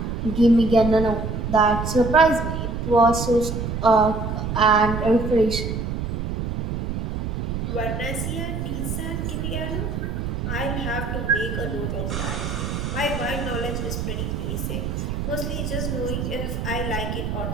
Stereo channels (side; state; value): right; noise; rumble, 3 dB below the sound